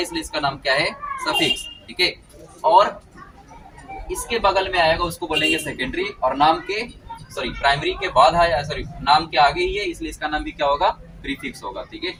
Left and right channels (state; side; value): identical; both; correlation 1.00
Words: इसका नाम क्या है, सफिक्स। ठीक है, और इसके बगल में आएगा उसको बोलेंगे सेकेंडरी, और नाम के प्राइमरी के बाद आया, नाम के आगे ही है इसलिए इसका नाम भी क्या होगा, प्रीफिक्स होगा। ठीक है,